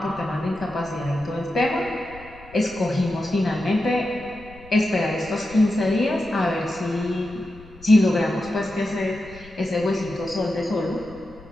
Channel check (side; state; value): left; noise; rumble, 21 dB below the sound